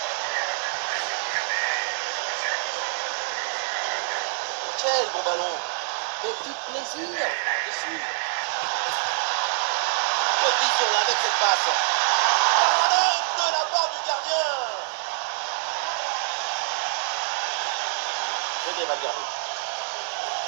Quel bon ballon. Petit plaisir par-dessus. Bonne vision là avec cette passe. Parade de la part du gardien. Venez Valverde.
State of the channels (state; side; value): silent; left; digital silence